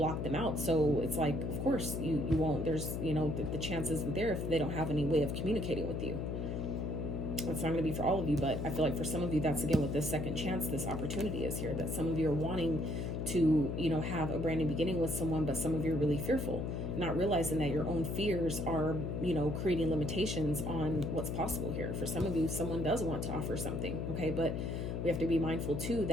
them out. So it's like, of course you won't, there's, you know, the chances are there if they don't have any way of communicating with you. It's not going to be for all of you, but I feel like for some of you, that's again what this second chance, this opportunity is here, that some of you are wanting to, you know, have a brand new beginning with someone, but some of you are really fearful, not realizing that your own fears are, you know, creating limitations on what's possible here. For some of you, someone does want to offer something. Okay, but we have to be mindful too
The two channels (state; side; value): noise; left; hum, 2 dB below the sound